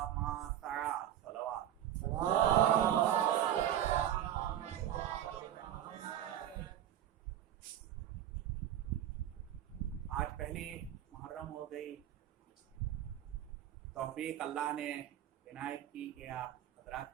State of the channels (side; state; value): left; quieter; 11.3 dB